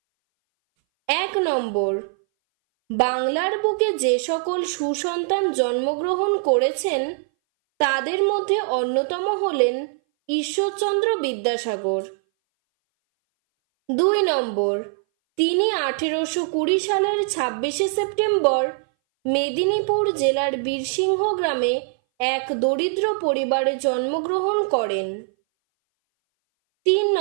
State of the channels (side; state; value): left; silent; 60 dB below the other